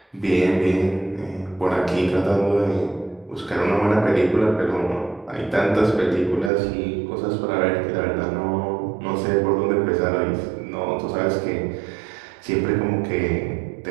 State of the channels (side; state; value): left; drops out; at 6.5 s